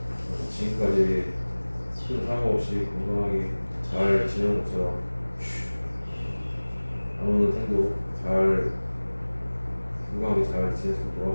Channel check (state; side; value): inverted; both; correlation -1.00